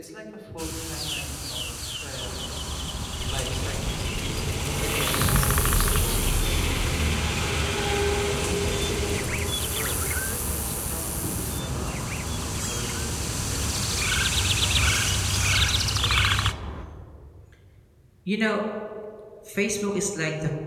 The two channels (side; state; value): both; identical; correlation 1.00